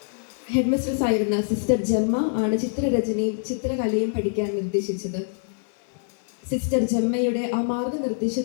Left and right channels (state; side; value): silent; right; digital silence